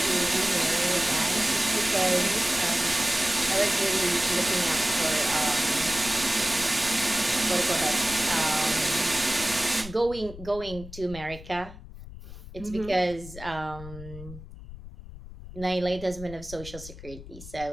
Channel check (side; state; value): left; noise; rumble, 14 dB below the sound